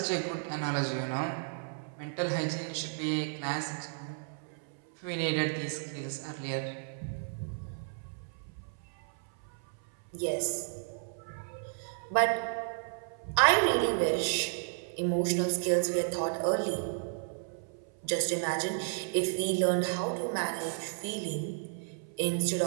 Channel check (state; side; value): silent; left; 56 dB below the other